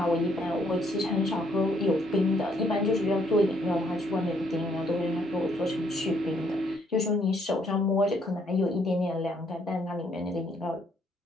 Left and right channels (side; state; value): both; normal; correlation 0.69